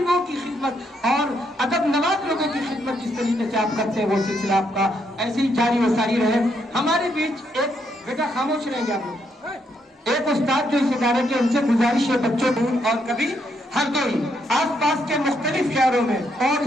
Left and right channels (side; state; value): both; normal; correlation 0.76